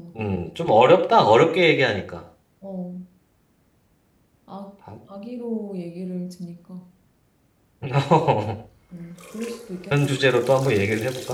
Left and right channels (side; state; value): both; identical; correlation 1.00